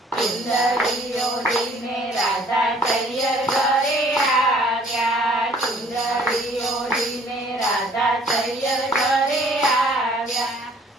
ચુંદડીઓ લઈને રાધા તૈયર ઘરે આવ્યા, ચુંદડીઓ લઈને રાધા તૈયર ઘરે આવ્યા,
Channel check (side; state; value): both; normal; correlation 0.57